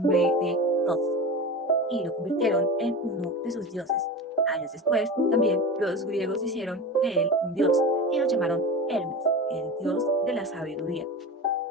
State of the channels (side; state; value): both; normal; correlation 0.29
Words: de Thoth y lo convirtieron en uno de sus dioses. Años después, también los griegos hicieron de él un dios y lo llamaron Hermes, el dios de la sabiduría.